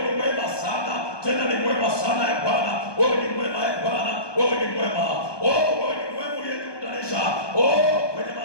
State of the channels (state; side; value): late; right; 1.2 ms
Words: ni mwema sana. Tena ni mwema sana Bwana. Wewe ni mwema Bwana. Wewe ni mwema. Oh, wewe ni mwema uliyekutanisha. Oh, kwenye